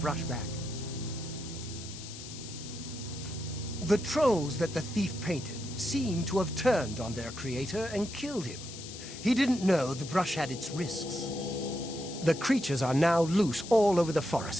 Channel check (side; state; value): left; noise; hiss, 12 dB below the sound